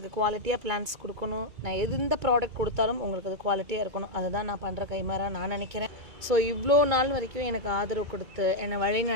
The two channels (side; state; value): left; late; 2.2 ms